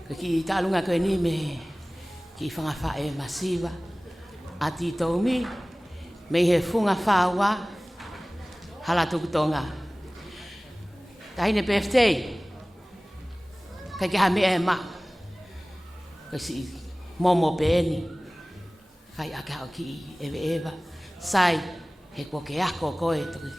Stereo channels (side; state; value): both; normal; correlation 0.98